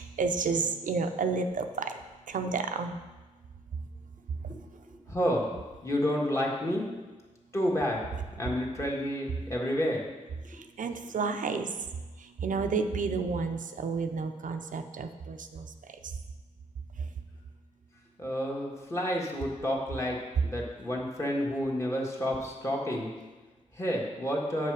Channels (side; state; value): both; normal; correlation 0.67